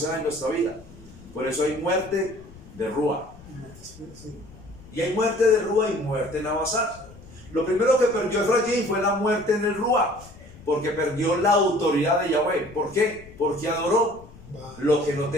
va en nuestra vida. Por eso hay muerte de Rúa. Sí. Y hay muerte de Rúa y muerte en Abasar. Lo primero que perdió Efraín fue la muerte en el Rúa, porque perdió la autoridad de Yahweh. ¿Por qué? Porque adoró lo que no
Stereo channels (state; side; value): noise; left; rumble, 20 dB below the sound